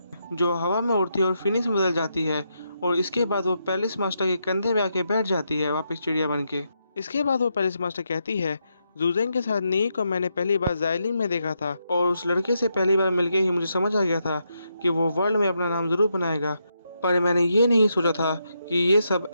जो हवा में उड़ती है और फिनिश में बदल जाती है, और इसके बाद वो पैलेस मास्टर के कंधे पे आके बैठ जाती है वापस चिड़िया बन के। इसके बाद वो पैलेस मास्टर कहती है, ज़ुज़ेंग के साथ नी को मैंने पहली बार ज़ाइलिंग में देखा था और उस लड़के से पहली बार मिलके ही मुझे समझ आ गया था कि वो वर्ल्ड में अपना नाम ज़रूर बनाएगा, पर मैंने ये नहीं सोचा था कि ये सब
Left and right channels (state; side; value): inverted; both; correlation -0.81